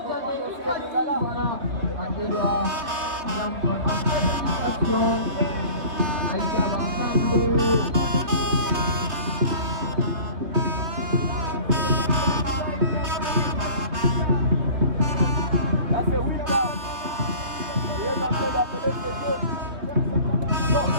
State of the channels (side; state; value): left; late; 3.4 ms